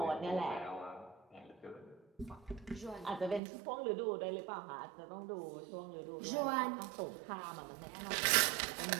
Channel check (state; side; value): drops out; left; at 3.4 s